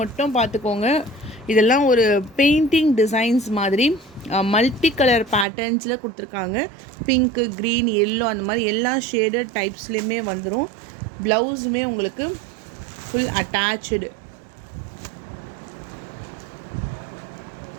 மட்டும் பார்த்துக்கோங்க. இதெல்லாம் ஒரு பெயிண்டிங் டிசைன்ஸ் மாதிரி மல்டி கலர் பேட்டர்ன்ஸில் கொடுத்துருக்காங்க. பிங்க்கு, க்ரீன், எல்லோ அந்த மாதிரி எல்லா ஷேடட் டைப்ஸ்லேயுமே வந்துடும். ப்ளவுஸுமே உங்களுக்கு full attach.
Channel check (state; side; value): drops out; left; at 5.5 s